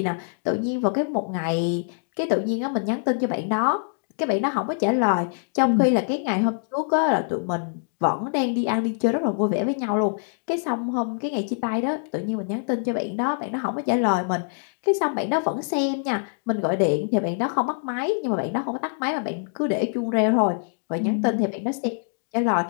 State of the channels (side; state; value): right; silent; digital silence